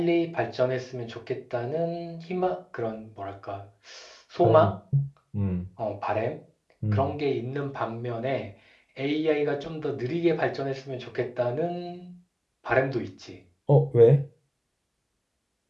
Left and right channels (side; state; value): both; identical; correlation 1.00